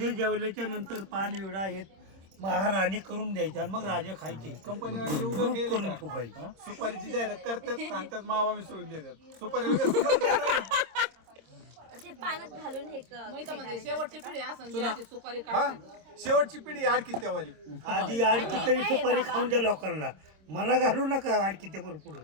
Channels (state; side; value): late; left; 26 ms